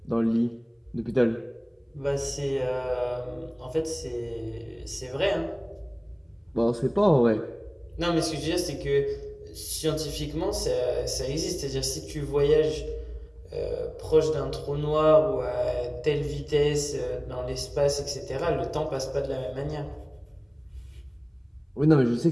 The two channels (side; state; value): both; identical; correlation 1.00